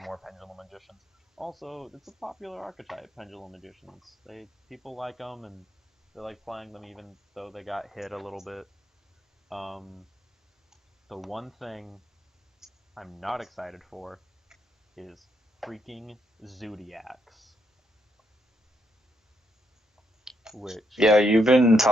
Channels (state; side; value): normal; both; correlation 0.77